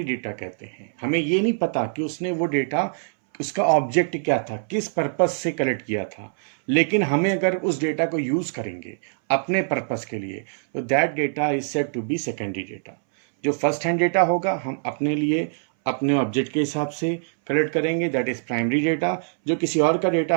डेटा कहते हैं। हमें ये नहीं पता कि उसने वो डेटा, उसका ऑब्जेक्ट क्या था, किस पर्पस से कलेक्ट किया था, लेकिन हमें अगर उस डेटा को यूज करेंगे अपने पर्पस के लिए, तो that data is said to be secondary data. जो फर्स्ट हैंड डेटा होगा हम अपने लिए अपने ऑब्जेक्ट के हिसाब से कलेक्ट करेंगे, दैट इज प्राइमरी डेटा। जो किसी और का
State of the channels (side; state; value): left; silent; 63 dB below the other